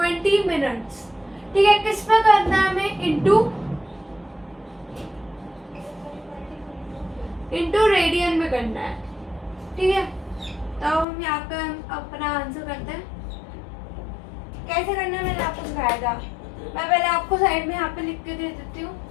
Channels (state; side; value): drops out; right; at 11.1 s